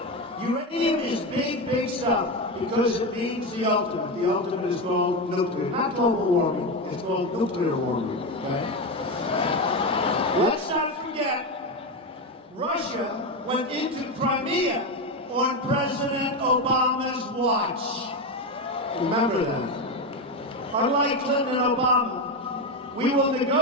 Uranium is big, big stuff because it means the ultimate. The ultimate is called nuclear. Not global warming. It's called nuclear warming. Okay? Let's not forget, Russia went into Crimea on President Obama's watch. Remember that. Unlike Clinton and Obama, we will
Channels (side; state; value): both; normal; correlation 0.14